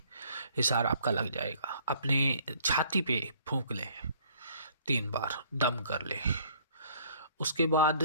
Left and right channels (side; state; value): both; inverted; correlation -0.58